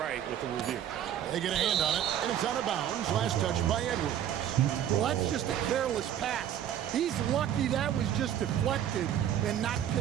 with the review. They get a hand on it, and it's out of bounds. Last touch by Edwards. Well, that's just a careless pass. He's lucky that was just deflected and not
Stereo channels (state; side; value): quieter; left; 10.4 dB